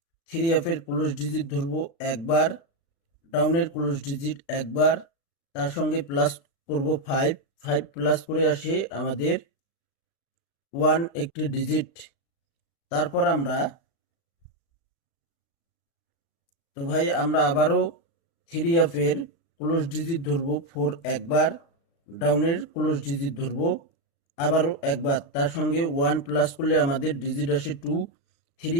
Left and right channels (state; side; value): late; right; 36 ms